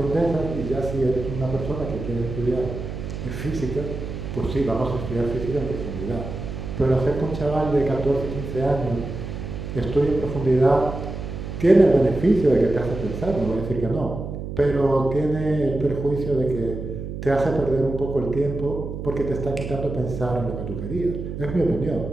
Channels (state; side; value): noise; right; hum, 7 dB below the sound